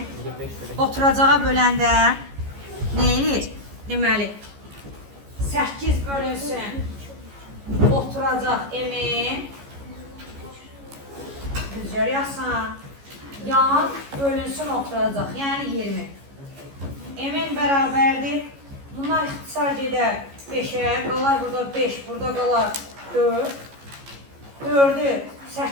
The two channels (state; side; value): late; left; 14 ms